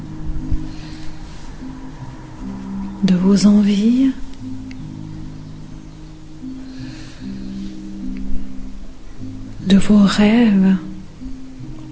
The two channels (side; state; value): both; identical; correlation 1.00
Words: de vos envies, de vos rêves